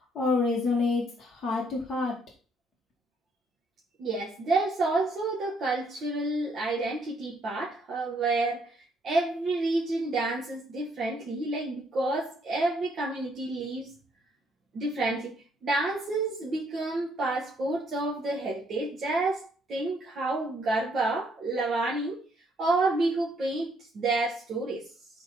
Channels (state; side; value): normal; both; correlation 0.69